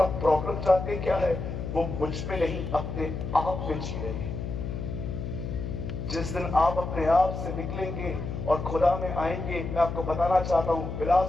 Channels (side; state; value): left; noise; hum, 5 dB below the sound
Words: प्रॉब्लम जानते क्या है, वो मुझ पे नहीं अपने आप में जी रहे हैं। जिस दिन आप अपने आप से निकलेंगे और खुदा में आएंगे, मैं आपको बताना चाहता हूं,